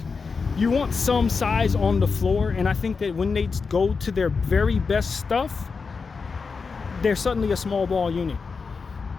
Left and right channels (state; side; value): quieter; right; 4.9 dB